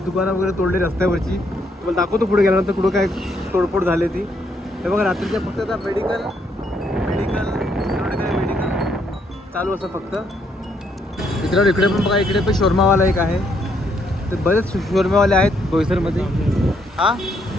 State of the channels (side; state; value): both; normal; correlation 0.73